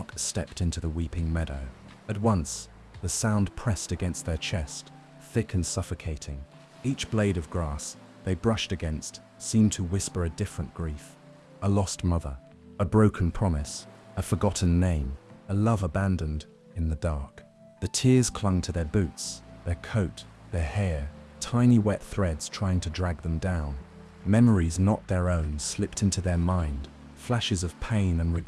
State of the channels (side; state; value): both; identical; correlation 1.00